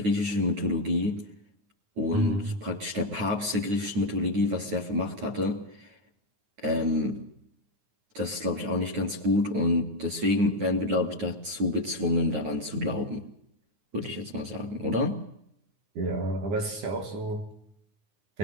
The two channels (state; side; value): late; left; 9.6 ms